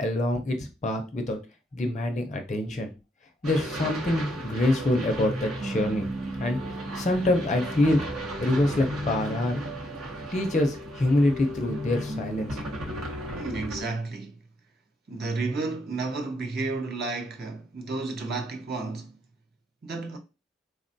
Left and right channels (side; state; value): both; normal; correlation 0.76